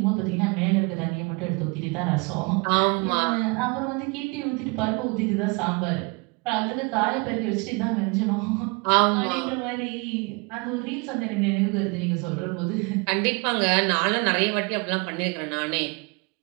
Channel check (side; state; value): left; quieter; 29.6 dB